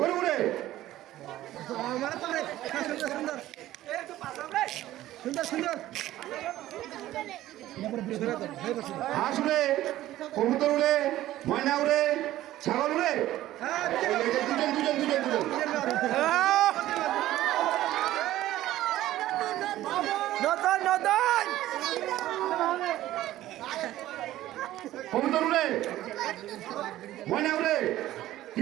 উড়ে হাঁস উড়ে কবুতর উড়ে ময়না উড়ে ছাগল উড়ে দুজন নতুন নতুন কবুতর উড়ে, ময়না উড়ে,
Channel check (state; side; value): quieter; left; 14.6 dB